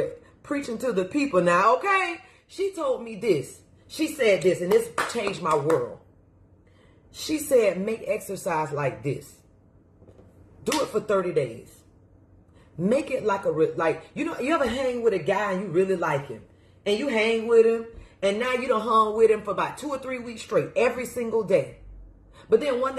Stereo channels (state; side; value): identical; both; correlation 1.00